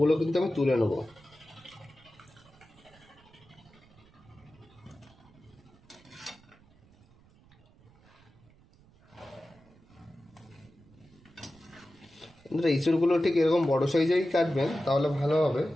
কিন্তু আমি তুলে নেবো। ইঁচড়গুলো ঠিক এরকম বড় সাইজেই কাটবেন, তাহলে ভালো হবে,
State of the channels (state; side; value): noise; right; rumble, 27 dB below the sound